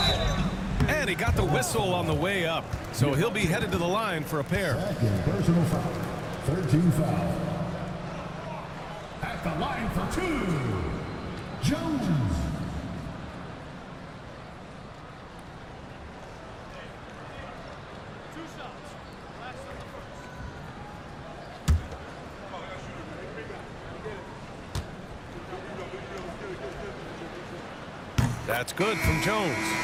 And he got the whistle on the way up. So he'll be headed to the line for a pair. Second personal foul. 13 foul. At the line for 2, Jones. That's good from Jones.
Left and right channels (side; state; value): both; identical; correlation 1.00